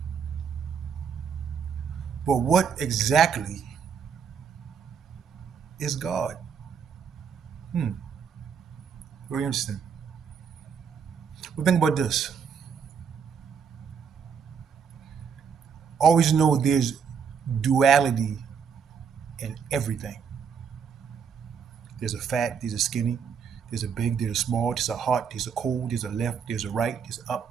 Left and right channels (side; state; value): left; quieter; 6.8 dB